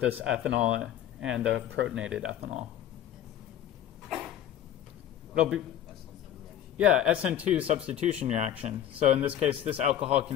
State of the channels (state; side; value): quieter; right; 10.7 dB